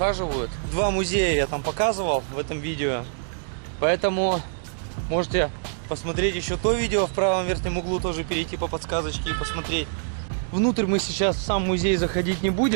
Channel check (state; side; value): silent; left; digital silence